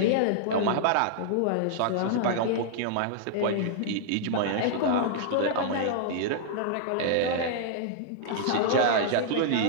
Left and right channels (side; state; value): both; different; correlation -0.01